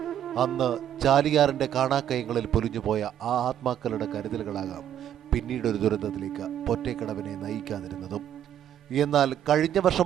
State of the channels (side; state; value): left; quieter; 10.4 dB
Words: അന്ന് ചാലിയാറിന്റെ കാണാക്കയങ്ങളിൽ പൊലിഞ്ഞുപോയ ആ ആത്മാക്കളുടെ കരുതലുകളാകാം പിന്നീടൊരു ദുരന്തത്തിലേക്ക് പൊറ്റേക്കടവിനെ നയിക്കാതിരുന്നതും. എന്നാൽ കഴിഞ്ഞ